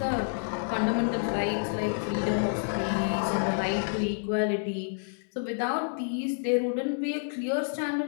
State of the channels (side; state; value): right; silent; 59 dB below the other